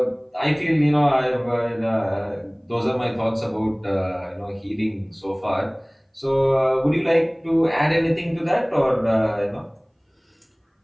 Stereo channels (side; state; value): both; identical; correlation 1.00